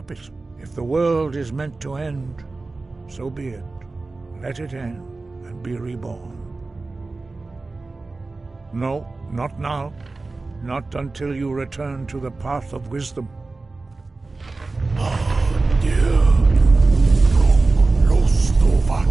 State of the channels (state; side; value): quieter; left; 3.5 dB